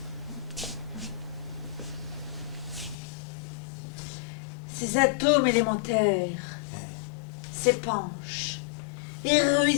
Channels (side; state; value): right; drops out; at 3.0 s